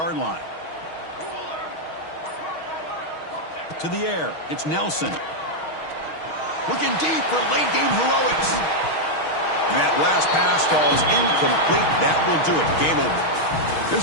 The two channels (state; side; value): late; right; 6.3 ms